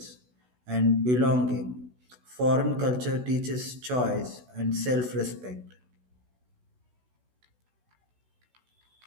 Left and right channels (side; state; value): left; late; 16 ms